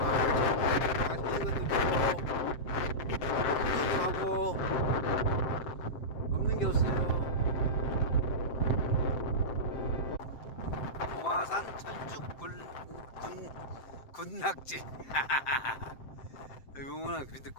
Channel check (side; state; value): right; late; 7.7 ms